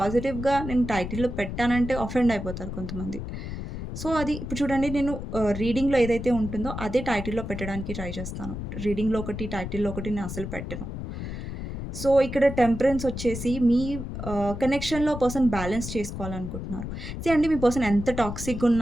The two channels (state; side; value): noise; left; rumble, 7 dB below the sound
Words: నేను టైటిల్‌లో పెట్టానంటే అఫెండ్ అయిపోతారు కొంతమంది. సో, అది ఇప్పుడు చూడండి, నేను రీడింగ్‌లో ఏదైతే ఉంటుందో అదే టైటిల్‌లో పెట్టడానికి ట్రై చేస్తాను. రీడింగ్‌లో ఒకటి, టైటిల్‌లో ఒకటి నేను అసలు పెట్టను. సో, ఇక్కడ టెంపరెన్స్ వచ్చేసి మీ కనెక్షన్‌లో పర్సన్ బ్యాలెన్స్ చేసుకోవాలనుకుంటున్నారు. అండి, మీ పర్సన్ ఎంత టాక్సిక్‌గా